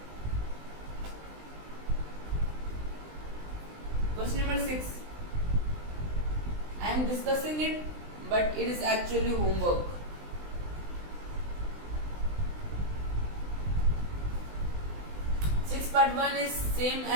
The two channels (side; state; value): left; late; 20 ms